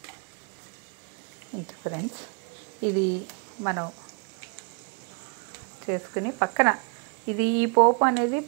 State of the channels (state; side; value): quieter; left; 36.9 dB